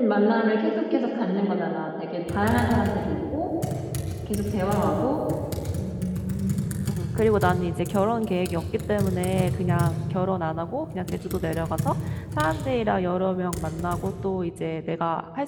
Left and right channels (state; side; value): identical; both; correlation 1.00